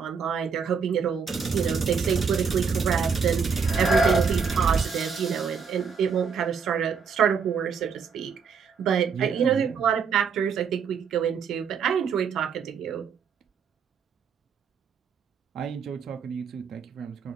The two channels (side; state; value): left; quieter; 6.1 dB